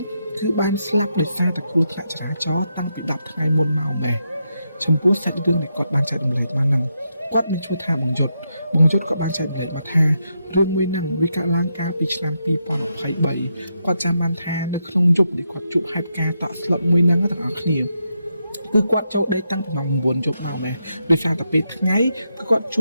គឺបានស្លាប់ដោយសារតែគ្រោះថ្នាក់ចរាចរណ៍តាំងពី10ថ្ងៃមុនមកម្លេះចំពោះសាច់រឿងដែលគាត់បានចែករំលែកមកហ្នឹងគាត់មានឈ្មោះថាបងយុទ្ធក៏បានចែករំលែកមកថារឿងមួយហ្នឹងវាកើតឡើងកាលពីឆ្នាំ2023គាត់ចាំបានថានៅក្នុងយប់ដែលគាត់ជួបហេតុការណ៍តក់ស្លុតមួយហ្នឹងទាំងអស់គ្នាគឺគាត់ចូលដេកតាំងពីម៉ោង9យប់មកដែរដោយសារតែពេលថ្ងៃគឺគាត់ជ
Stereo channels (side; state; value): both; inverted; correlation -0.83